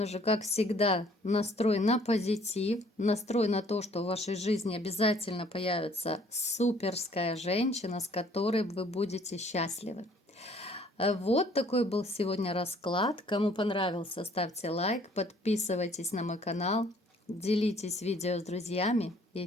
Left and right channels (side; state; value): both; normal; correlation 0.59